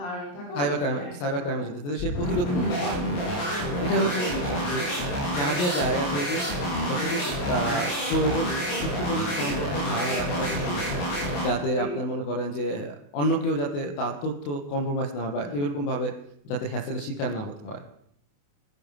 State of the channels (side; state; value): right; late; 28 ms